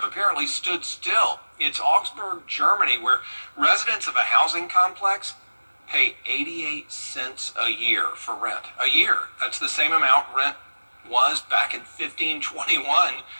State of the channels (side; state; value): both; inverted; correlation -1.00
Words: apparently stood still. It's Augsburg, Germany, where residents of a housing complex pay 88 cents a year for rent. A year. That's the same amount rent was back in 1521.